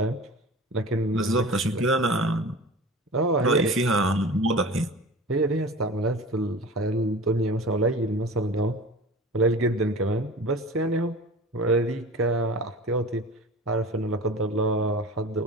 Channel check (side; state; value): both; normal; correlation 0.36